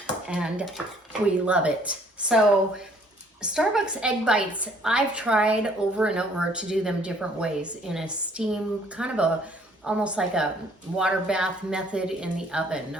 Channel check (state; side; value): normal; both; correlation 0.60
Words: and we love it. So Starbucks egg bites, I've tried over and over to do them different ways in a steam, kind of almost like a water bath method in the oven.